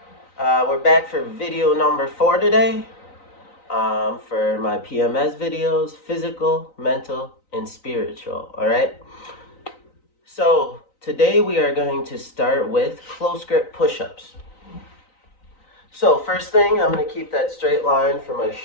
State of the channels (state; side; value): late; right; 3.9 ms